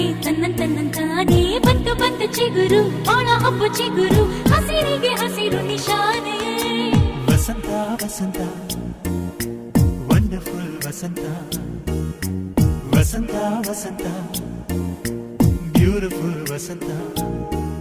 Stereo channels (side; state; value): both; identical; correlation 1.00